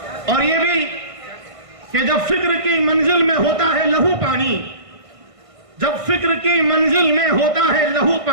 اور یہ بھی کہ جب فکر کی منزل میں ہوتا ہے لہو پانی، جب فکر کی منزل میں ہوتا ہے لہو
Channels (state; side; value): late; left; 1.5 ms